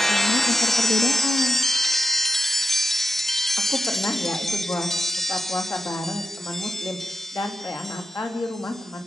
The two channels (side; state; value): both; normal; correlation 0.89